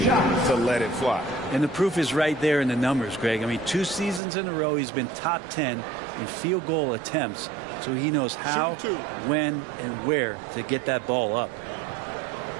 to let it fly. And the proof is right there in the numbers, Greg. I mean, 2 seasons in a row, he's been top 10 in field goal attempts. So he knows how, when, and where to get that ball up.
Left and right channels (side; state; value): left; drops out; at 4.2 s